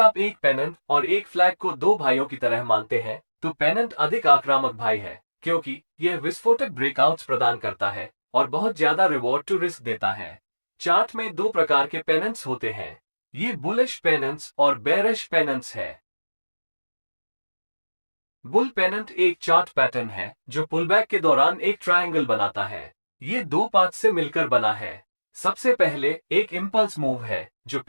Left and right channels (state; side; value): inverted; both; correlation -1.00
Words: एक पेनेंट और एक फ्लैग को दो भाइयों की तरह मानते हैं तो पेनेंट अधिक आक्रामक भाई है क्योंकि यह विस्फोटक ब्रेकआउट्स प्रदान करता है और बहुत ज्यादा रिवॉर्ड टू रिस्क देता है। चार्ट में दो प्रकार के पेनेंट्स होते हैं, ये बुलिश पेनेंट्स और बेरिश पेनेंट्स है। बुल पेनेंट एक चार्ट पैटर्न है जो पुलबैक के दौरान एक ट्रायंगल बनाता है। ये दो पार्ट से मिलकर बना है। सबसे पहले एक इंपल्स मूव है जो